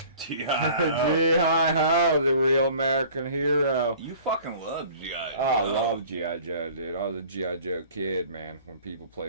G-Hi-Ho, the real American hero. You fucking love G.I. Joe. Oh, I love G.I. Joe, dude. I was a G.I. Joe kid, man. When people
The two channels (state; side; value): inverted; both; correlation -0.48